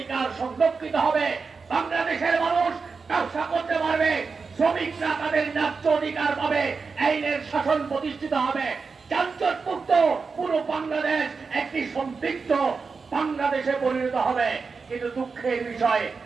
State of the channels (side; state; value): left; quieter; 4.8 dB